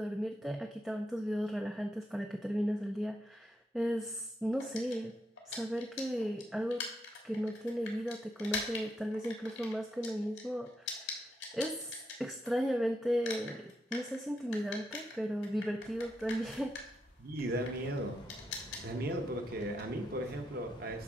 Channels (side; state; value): both; normal; correlation 0.82